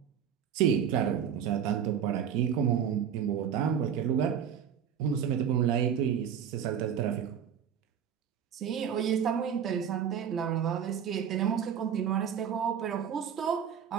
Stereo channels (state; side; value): quieter; left; 8.3 dB